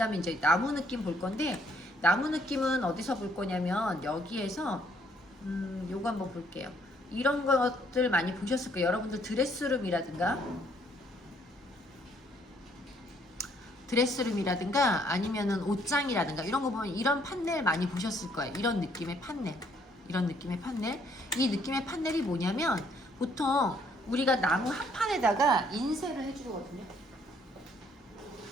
이제 나무 느낌 볼 건데, 나무 느낌은 어디서 볼 거냐면 여기에서 요거 한번 볼게요. 이런 것들 많이 보셨을 거예요. 여러분들 드레스룸이라든가 아니면은 옷장이라든가 이런 거 보면 이런 판넬 많이 보셨을 거예요. 이런 느낌의 판넬. 이 느낌의 판넬이 뭐냐면 보통 우리가 나무 한 판에다가 인쇄를 해주거든요.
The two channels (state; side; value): normal; both; correlation 0.66